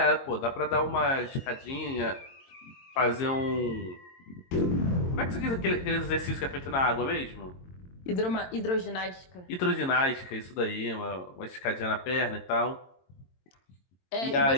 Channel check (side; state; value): right; late; 22 ms